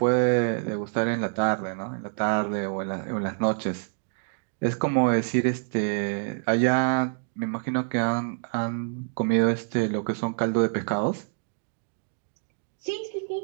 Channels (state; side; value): silent; left; digital silence